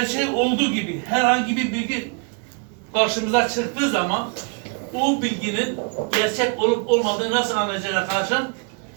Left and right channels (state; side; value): quieter; left; 35.4 dB